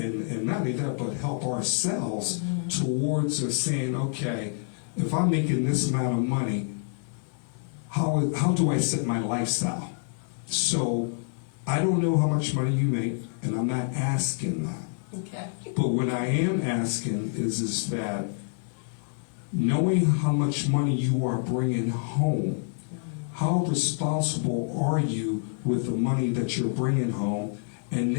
not only that, but help ourselves towards saying, okay, if I'm making this amount of money, how do I set my lifestyle? So I don't know how much money you make, and I'm not asking that. Okay. But what I am asking is that knowing how much money you are bringing home, how responsible are you with the money that you're bringing home? And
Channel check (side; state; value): right; silent; 60 dB below the other